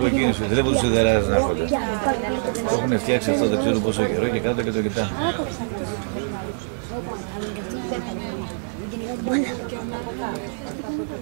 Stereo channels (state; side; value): silent; left; digital silence